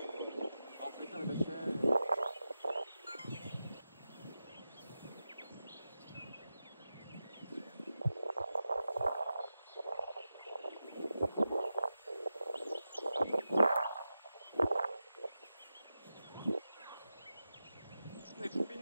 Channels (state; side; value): inverted; both; correlation -0.92